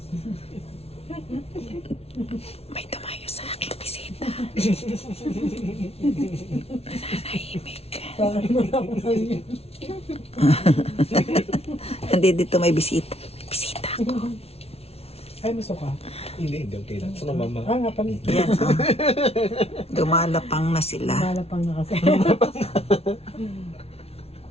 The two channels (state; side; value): late; right; 0.30 ms